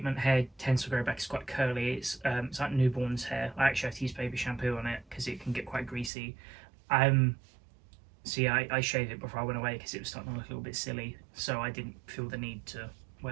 hair tends to grow back. It's quite curly. It's like newborn's hair. I actually have to use baby shampoo on it because it can get quite greasy. So yeah, I shaved it before I went away because it was starting to look a little bit silly, so I didn't feel the need to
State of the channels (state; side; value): drops out; left; at 6.1 s